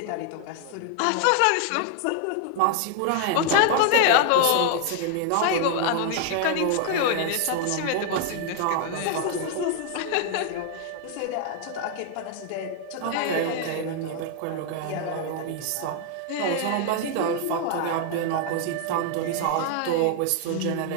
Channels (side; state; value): both; different; correlation 0.00